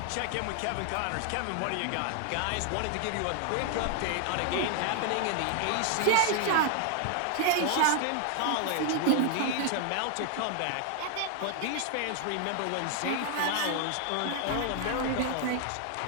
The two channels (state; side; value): different; both; correlation 0.00